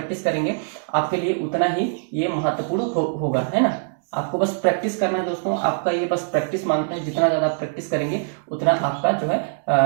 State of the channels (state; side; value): silent; left; digital silence